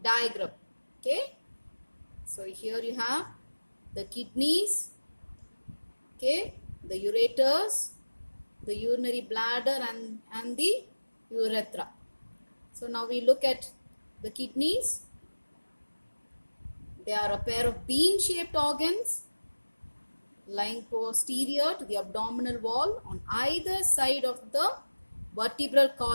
diagram. Okay, so here you have the kidneys, okay, the ureters, the urinary bladder, and the urethra. So now we look at the kidneys. They are a pair of bean-shaped organs lying posterior to the abdominal wall on either side of the vertebral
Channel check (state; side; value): inverted; both; correlation -1.00